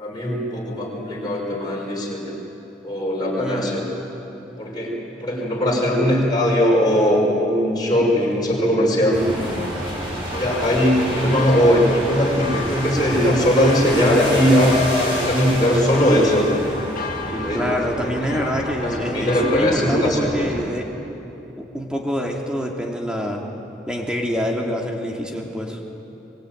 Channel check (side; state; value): both; normal; correlation 0.61